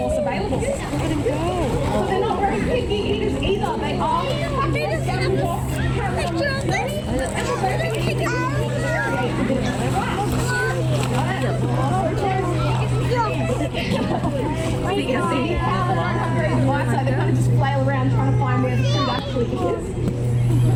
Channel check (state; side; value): identical; both; correlation 1.00